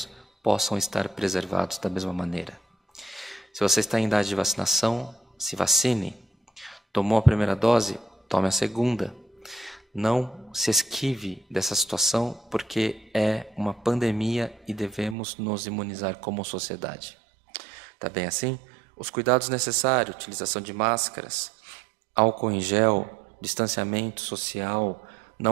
possam estar preservados da mesma maneira. Se você está em idade de vacinação, se vacine. Tomou a primeira dose, tome a segunda. Não se esquive dessa situação, porque é uma pandemia e devemos nos imunizar como sociedade. Tá bem assim? Os cuidados necessários, utilização de máscaras, álcool em gel, distanciamento social,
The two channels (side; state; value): left; drops out; at 15.2 s